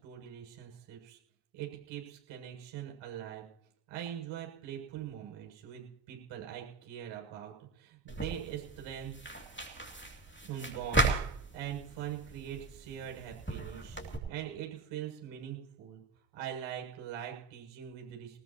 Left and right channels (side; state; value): left; quieter; 4.2 dB